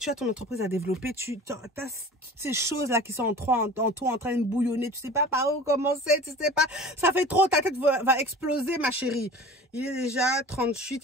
as ton entreprise à développer. Tu as toutes ces choses-là qui sont en toi en train de bouillonner. Tu sais pas par où commencer. Tu sais pas. Ça fait trop. Ta tête va exploser, ma chérie. Il est déjà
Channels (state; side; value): normal; both; correlation 0.40